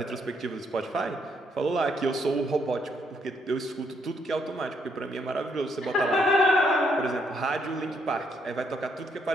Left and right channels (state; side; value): normal; both; correlation 0.73